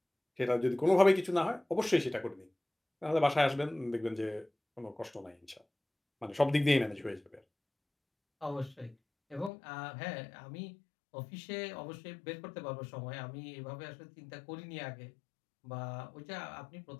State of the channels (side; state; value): right; drops out; at 9.5 s